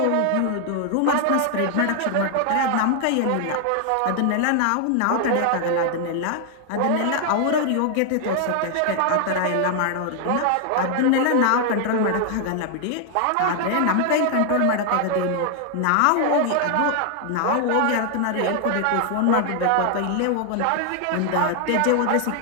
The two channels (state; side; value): different; both; correlation 0.00